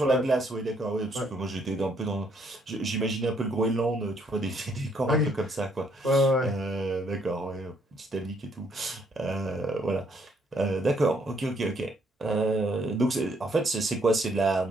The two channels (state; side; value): normal; both; correlation 0.69